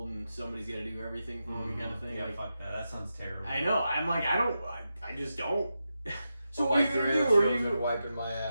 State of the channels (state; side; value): inverted; both; correlation -0.89